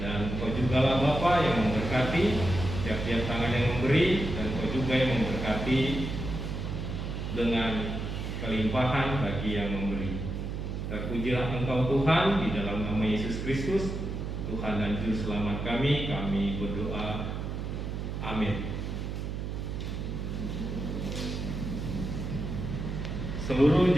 Engkau juga lah Bapa yang memberkati tiap-tiap tangan yang memberi, dan Engkau juga yang memberkati dengan kelimpahan bagi yang memberi. Terpujilah Engkau Tuhan, di dalam nama Yesus Kristus, Tuhan dan Juru Selamat kami berdoa. Amin. Seluruh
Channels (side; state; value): right; noise; hum, 4 dB below the sound